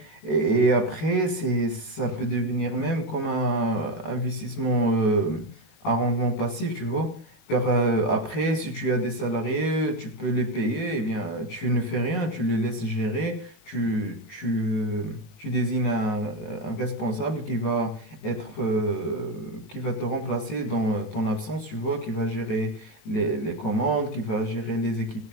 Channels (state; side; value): late; right; 19 ms